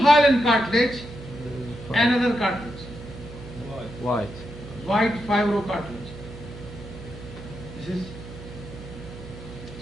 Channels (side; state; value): right; noise; hum, 14 dB below the sound